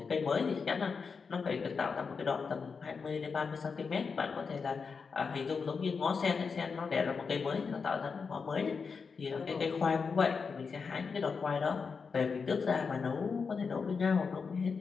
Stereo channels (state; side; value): quieter; right; 5.3 dB